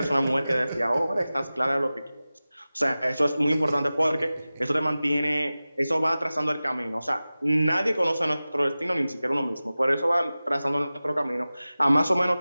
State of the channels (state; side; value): inverted; both; correlation -0.97